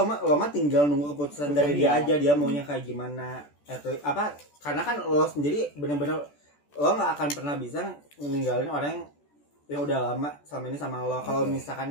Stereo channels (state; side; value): late; right; 14 ms